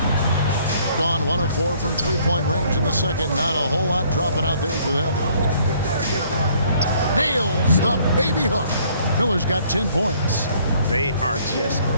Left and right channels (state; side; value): inverted; both; correlation -0.61